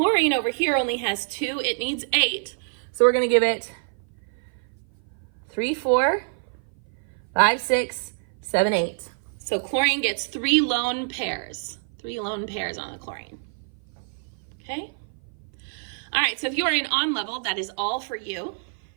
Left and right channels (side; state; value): left; silent; 56 dB below the other